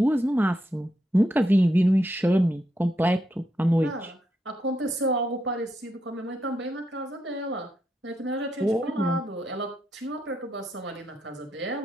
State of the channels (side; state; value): both; normal; correlation 0.81